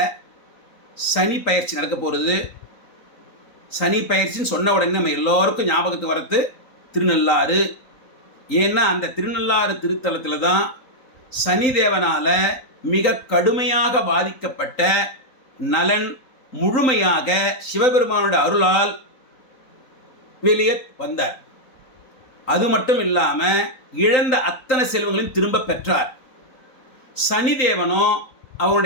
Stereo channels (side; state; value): right; late; 3.9 ms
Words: சனி பயிற்சி நடக்க போகிறது. சனி பயிற்சின்னு சொன்ன உடனே நம்ம எல்லோருக்கும் ஞாபகத்துக்கு வரது திருநள்ளாறு. ஏன்னா அந்த திருநள்ளாறு திருத்தலத்தில் தான் சனி தேவனால் மிக கடுமையாக பாதிக்கப்பட்ட நலன் முழுமையாக சிவபெருமானோட அருளால் வெளியே வந்தார். அது மட்டும் இல்லாமல் இழந்த அத்தனை செல்வங்களையும் திரும்ப பெற்றார். சனிதேவனோ